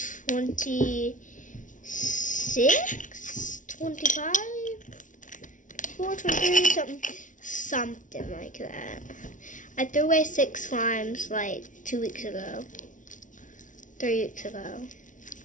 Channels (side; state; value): right; late; 0.37 ms